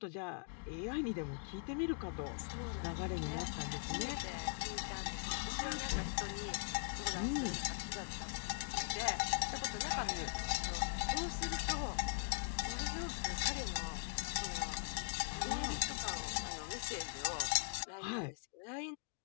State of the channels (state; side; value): silent; right; 50 dB below the other